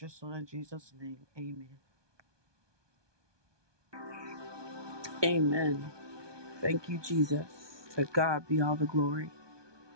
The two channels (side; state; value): left; late; 1.2 ms